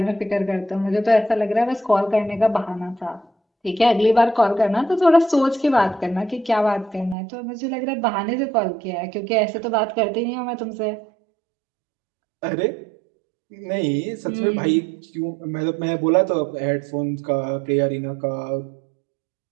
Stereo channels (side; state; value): left; drops out; at 7.2 s